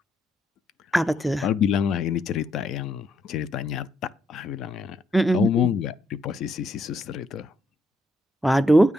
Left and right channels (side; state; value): both; normal; correlation 0.76